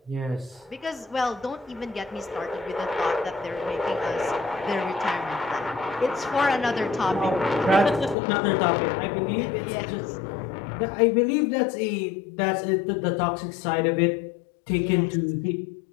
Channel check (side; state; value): right; drops out; at 8.2 s